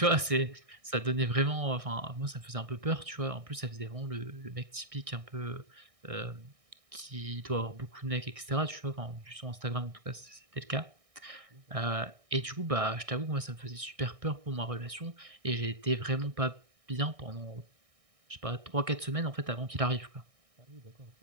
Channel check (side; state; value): left; late; 1.6 ms